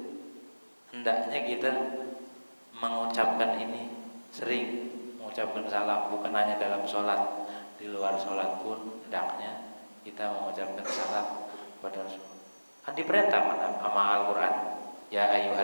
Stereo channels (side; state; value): both; inverted; correlation -1.00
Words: Hendaknya kita mengucapkan ini sering, mengucapkan salam, bukan hanya dalam sholat, di luar sholat pun hendaknya kita mengucapkan salam kepada Rasulullah. Kan diperintah sama Al-Quran, ya